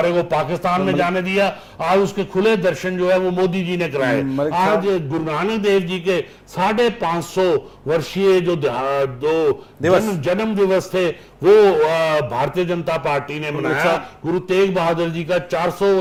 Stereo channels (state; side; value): identical; both; correlation 1.00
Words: को पाकिस्तान में जाने दिया। आज उसके खुले दर्शन जो है वो मोदी जी ने कराए। आज गुरु नानक देव जी के 550 वर्षीय जो जन्म दिवस थे वो भारतीय जनता पार्टी ने मनाया। गुरु तेग बहादुर जी का 400